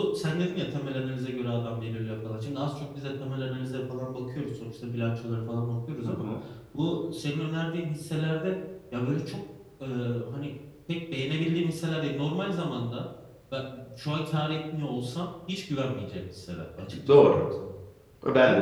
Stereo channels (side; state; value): both; identical; correlation 1.00